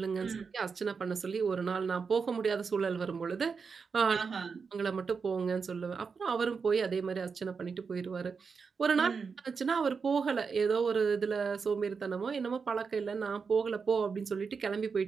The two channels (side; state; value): left; quieter; 5.4 dB